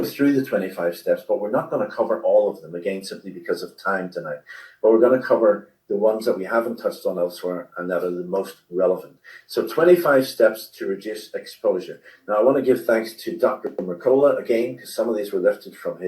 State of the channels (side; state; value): both; identical; correlation 1.00